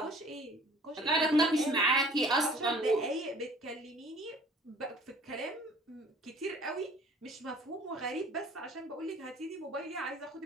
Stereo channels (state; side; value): normal; both; correlation 0.51